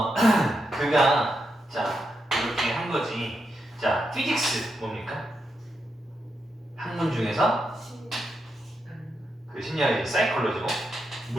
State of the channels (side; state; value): both; normal; correlation 0.84